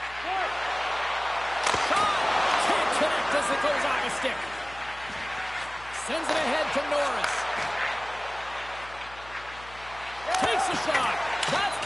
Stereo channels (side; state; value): left; noise; hum, 19 dB below the sound